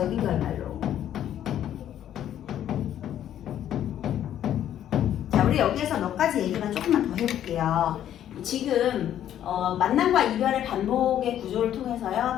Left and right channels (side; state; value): right; quieter; 10.9 dB